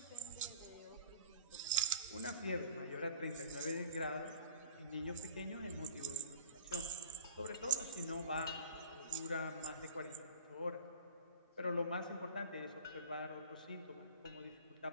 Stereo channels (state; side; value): inverted; both; correlation -0.43